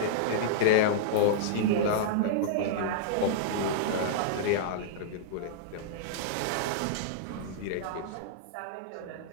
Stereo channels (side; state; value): both; different; correlation -0.02